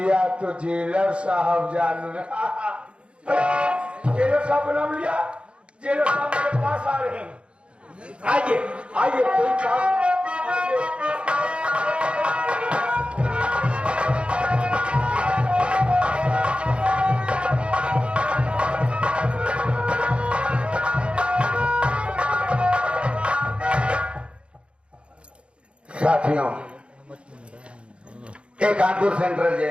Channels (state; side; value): late; left; 0.058 ms